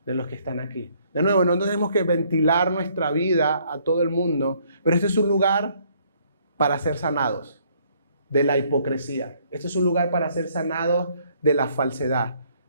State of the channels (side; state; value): both; inverted; correlation -0.66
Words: de los que están aquí. De nuevo, no tenemos que ventilar nuestra vida a todo el mundo, pero este es un lugar para ser sanados de la hipocresía. Este es un lugar para ser sanados de la falsedad.